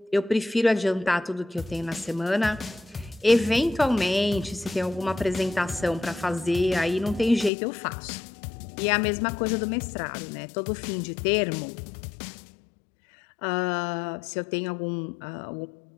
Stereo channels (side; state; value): right; drops out; at 7.5 s